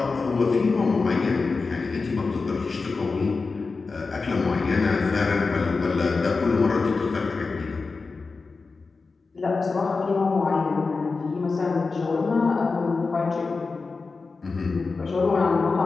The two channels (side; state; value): right; quieter; 4.2 dB